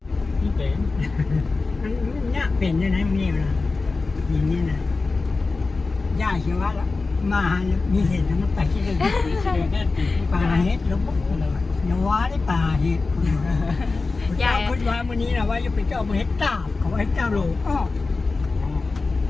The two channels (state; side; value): quieter; right; 3.9 dB